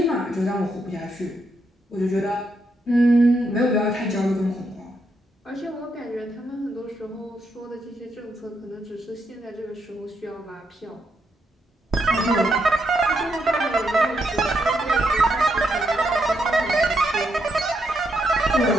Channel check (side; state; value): both; normal; correlation 0.79